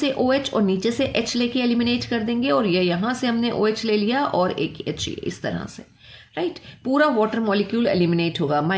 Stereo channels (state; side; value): identical; both; correlation 1.00